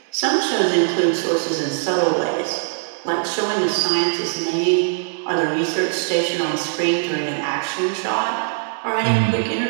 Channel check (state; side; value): silent; left; 65 dB below the other